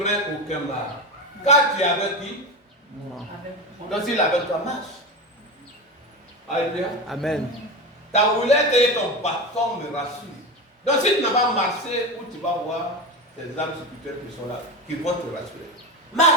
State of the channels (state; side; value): normal; both; correlation 0.21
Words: aucun mal. Car tu es avec qui? Moi. Donc s'il est avec toi, marche. Alléluia. Amen. Ta roulette et ton bâton me rassurent. Donc si tu n'as pas marché, où tu vas voir ces âmes spirituelles qui sont là, qui vont te rassurer.